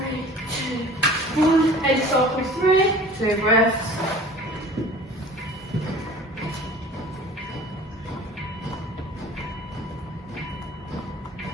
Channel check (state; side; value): normal; both; correlation 0.44